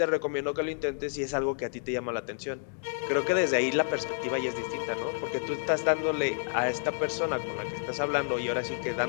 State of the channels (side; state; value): right; silent; digital silence